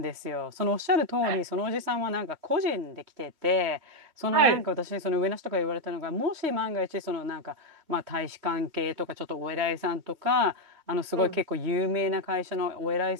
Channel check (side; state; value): left; late; 3.2 ms